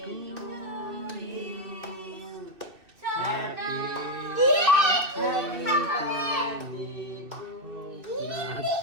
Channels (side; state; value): left; late; 2.6 ms